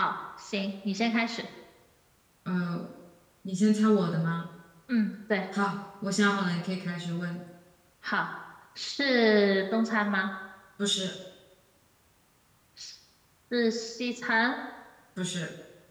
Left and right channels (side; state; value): both; identical; correlation 1.00